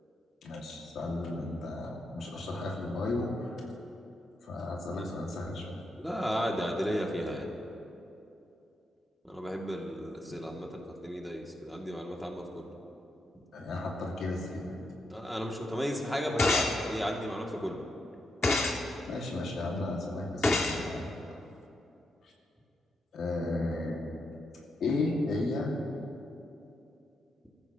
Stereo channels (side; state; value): both; normal; correlation 0.82